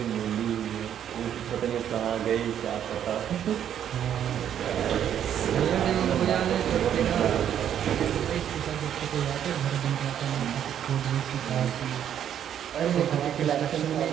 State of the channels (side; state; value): left; quieter; 9.7 dB